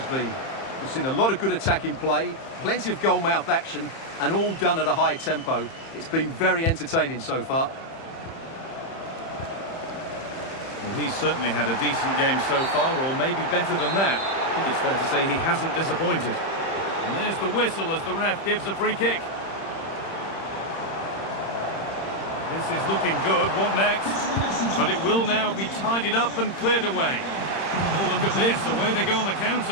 been. We've seen a lot of good attacking play, plenty of goal-mouth action, and all done at a high tempo. It's been very entertaining so far. Well, he's certainly had a decent game so far, or maybe better than that. I think it's fair to say he hasn't disappointed. And there's the whistle as the ref gives a free kick. This is looking good. What next? But it will now be tidied up and cleared away. Oh, look at this. Away they go on the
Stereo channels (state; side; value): late; right; 30 ms